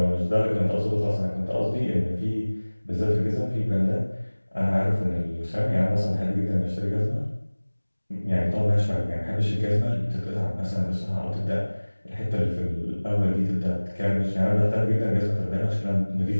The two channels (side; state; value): both; inverted; correlation -1.00